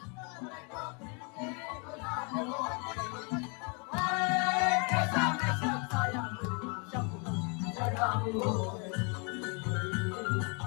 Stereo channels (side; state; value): right; quieter; 34.3 dB